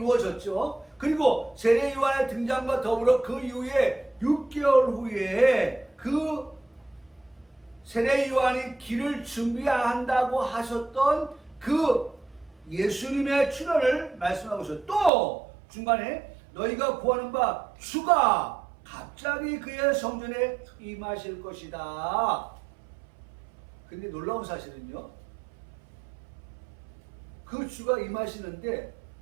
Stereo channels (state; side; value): drops out; left; at 15.1 s